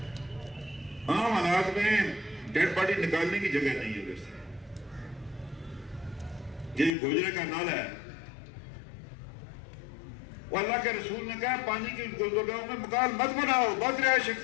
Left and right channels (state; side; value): drops out; right; at 7.0 s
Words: عام حالات میں ڈیڈ باڈی نکالنے کی جگہ نہیں ہے. ویسے یہ گوجرے کا نالا ہے، وہ اللہ کے رسول نے کہا پانی کی گزرگاہوں میں مکان مت بناؤ، مت رہائش